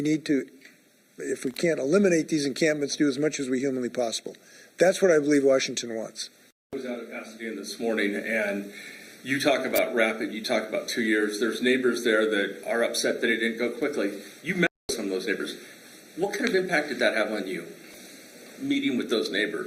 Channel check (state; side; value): identical; both; correlation 1.00